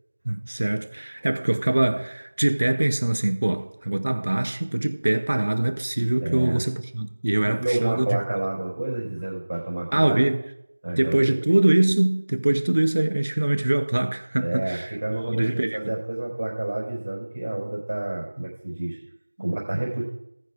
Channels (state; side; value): inverted; both; correlation -1.00